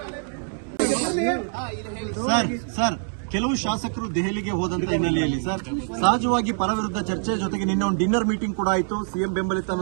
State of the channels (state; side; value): silent; left; 60 dB below the other